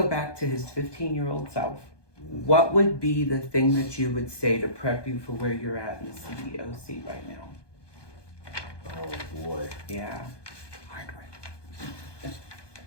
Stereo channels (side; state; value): right; late; 1.2 ms